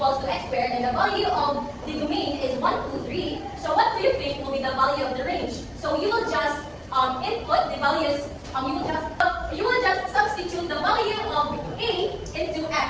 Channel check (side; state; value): both; identical; correlation 1.00